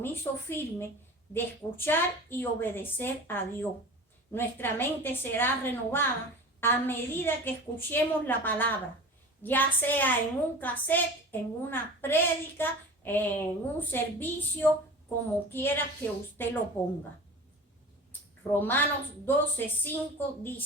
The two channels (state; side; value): normal; both; correlation 0.36